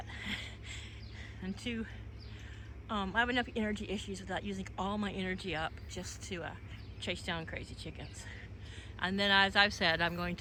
and too I have enough energy issues without using all my energy up just to chase down crazy chickens. And then, as I've said, I'm going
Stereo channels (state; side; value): identical; both; correlation 1.00